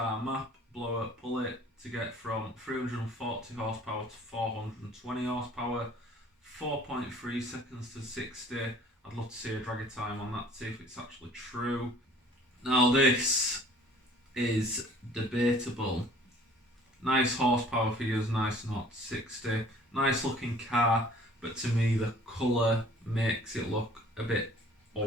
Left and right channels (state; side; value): normal; both; correlation 0.52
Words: map blower pull it to get from 340 horsepower to 420 horsepower, 4.3 seconds to 60. I'd love to see a draggy time on that to see if it's actually true. Now this is debatable. Nice horsepower figures, nice not 60. Nice looking car, but to me the colour makes it look a bit